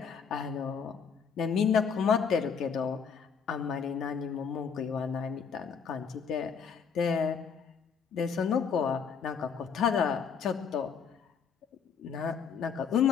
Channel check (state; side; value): quieter; right; 6.6 dB